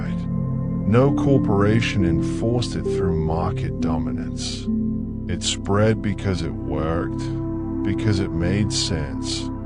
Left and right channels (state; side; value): identical; both; correlation 1.00